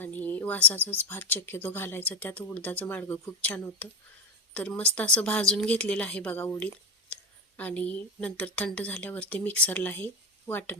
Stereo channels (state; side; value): normal; both; correlation 0.15